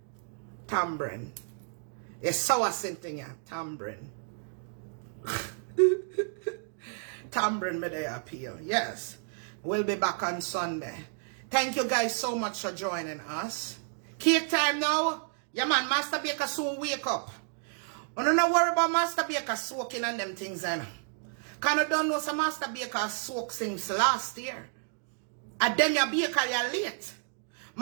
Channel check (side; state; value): left; silent; 57 dB below the other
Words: It's sour scenting, yeah. Tambrin. Tambrin me they appeal. Yes. We'll be back on Sunday. Thank you guys so much for joining us. Cake time now. Yeah man, Master Baker soon wake up. I don't worry about Master Baker soaking and them things then. Cause I don't know some Master Baker soak since last year. And then your baker you're late.